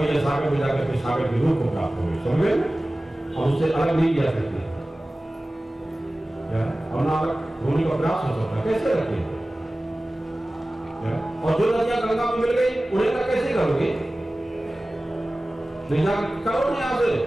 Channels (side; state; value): both; normal; correlation 0.97